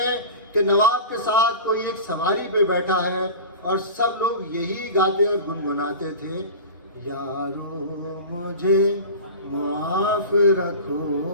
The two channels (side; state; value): both; inverted; correlation -0.33